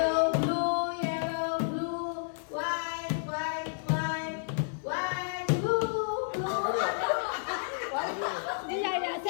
blue, white, white, white, white, blue, blue. Yeah.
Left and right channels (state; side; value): silent; right; digital silence